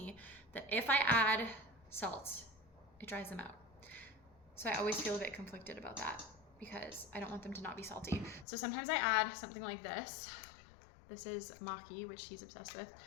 that if I add salt, it dries them out. So I always feel a bit conflicted about that because I don't want them to not be salty. So sometimes I add something like this. This is maki, which he's obsessed with,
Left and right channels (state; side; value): drops out; right; at 8.5 s